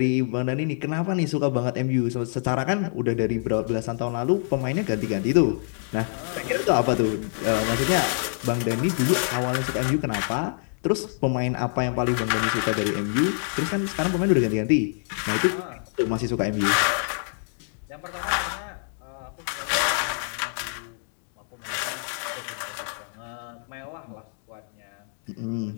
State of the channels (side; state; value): right; silent; digital silence